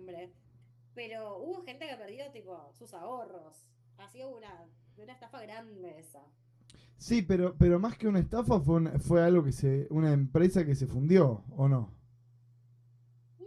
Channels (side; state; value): both; identical; correlation 1.00